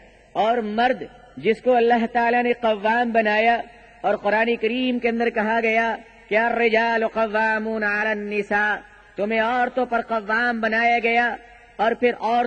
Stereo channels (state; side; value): identical; both; correlation 1.00